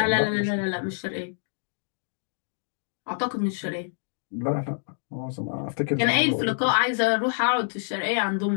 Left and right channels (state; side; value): silent; right; digital silence